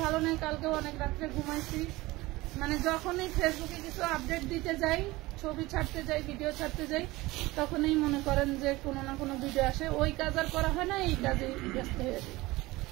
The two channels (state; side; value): quieter; left; 20.1 dB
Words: ভালো নেই, কালকেও অনেক রাত্রে ঘুমাইছি, মানে যখনই ফেসবুকে কিছু আপডেট দিতে যাই, ছবি ছাড়তে যাই, ভিডিও ছাড়তে যাই, তখনই মনে করেন যে কোনো না কোনো ভিডিও আসে, ওই কাজ আর করা হয় না, এই কাজে ব্যস্ত হয়ে যায়।